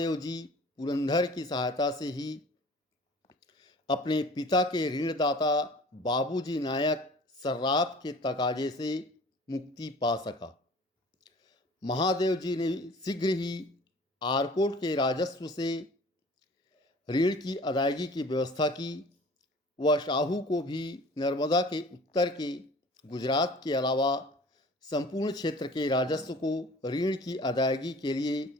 पुरंदर की सहायता से ही अपने पिता के ऋणदाता बाबूजी नायक सर्राफ के तकाजे से मुक्ति पा सका। महादेव जी ने शीघ्र ही आरकोट के राजस्व से ऋण की अदायगी की व्यवस्था की। वह शाहू को भी नर्मदा के उत्तर के गुजरात के अलावा संपूर्ण क्षेत्र के राजस्व को ऋण की अदायगी के लिए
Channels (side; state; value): both; normal; correlation 0.45